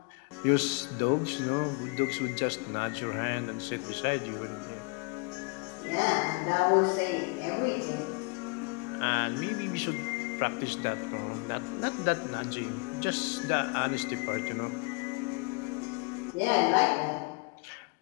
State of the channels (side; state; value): right; quieter; 32.7 dB